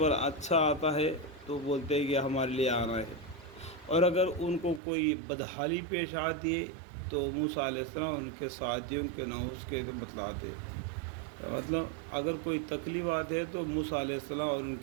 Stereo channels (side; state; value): left; drops out; at 4.8 s